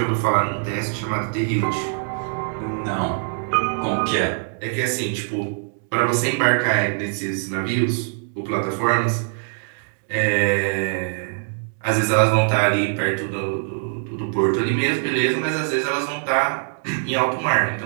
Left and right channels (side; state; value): left; silent; 64 dB below the other